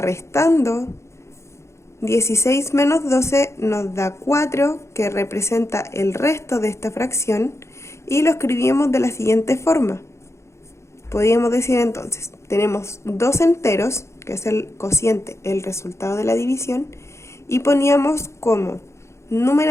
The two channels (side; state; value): right; late; 0.13 ms